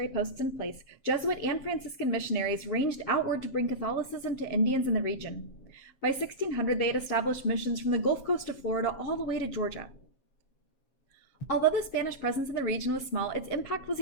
posts in place, Jesuit and Franciscan missionaries ranged outward to bring Catholicism to Indians in the region. By 1600, they had established missions from the Gulf Coast of Florida all the way to Georgia. Although the Spanish presence in the region was small, its impact was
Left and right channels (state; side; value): late; right; 7.4 ms